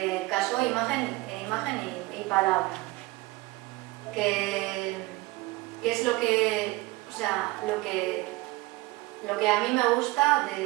casó imagen y palabra, que es lo que a mí me gusta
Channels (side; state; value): left; quieter; 21.1 dB